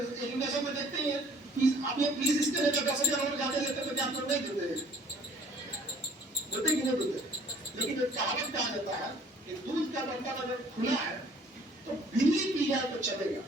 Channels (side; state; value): both; normal; correlation 0.56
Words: एजुकेशन में देखते ही है आप ये फीस इसके लिए 10,000 और ज्यादा लेते तो क्या आप लोग नहीं देते कि नहीं देते। लेकिन एक कहावत कहा जाता है कि दूध का बर्तन अगर खुला है तो बिल्ली पी जाए तो चलेगा,